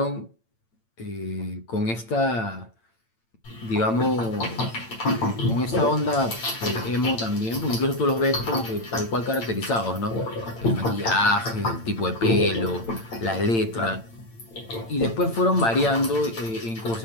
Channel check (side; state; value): right; late; 8.8 ms